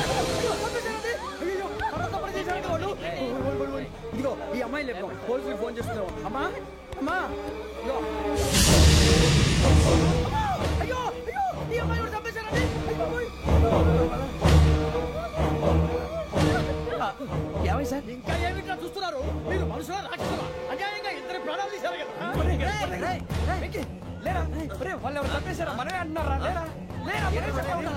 ఇదిగో ఈ అమ్మాయి లేపు పోలీసులకు ఫోన్ చేస్తున్నావు. అమ్మా అమ్మా అయ్యో అయ్యో ఈ అమ్మాయి కూడా చంపేశారండి. ఏమై సార్ ఇంకా ఏమిట్లా చూస్తున్నారు? మీరు మనుషుల రాక్షసులా? అన్యాయంగా ఇద్దరు ప్రాణాలు తీశారు కదా. లేరా వాళ్ళు ఎవరు చంపేశారా? మనమే అంటున్నారా? లేరా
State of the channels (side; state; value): both; identical; correlation 1.00